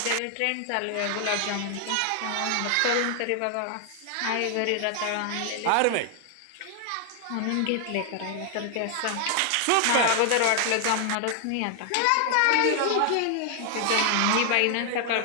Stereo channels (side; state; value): both; different; correlation 0.00